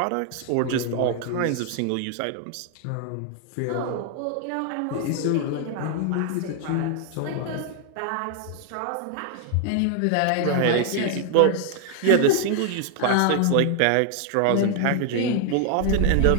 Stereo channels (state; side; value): different; both; correlation 0.00